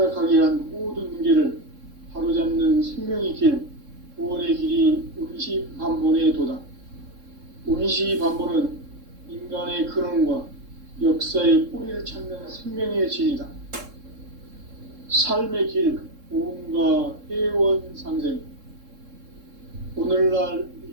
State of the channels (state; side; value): late; left; 3.7 ms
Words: 한 모든 문제를 바로잡는 생명의 길, 구원의 길이 운시반본의 도다. 운시반본은 인간의 근원과 역사의 뿌리를 찾는 생명의 진리다. 삶의 길, 보험과 회원 상생. 오늘날